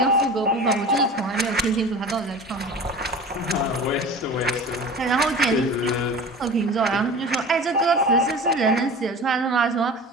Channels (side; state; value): both; normal; correlation 0.36